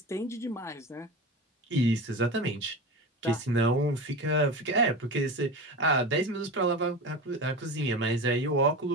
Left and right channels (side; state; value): both; normal; correlation 0.27